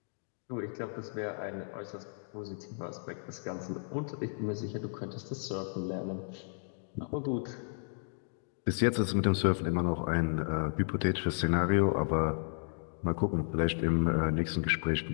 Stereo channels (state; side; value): silent; right; digital silence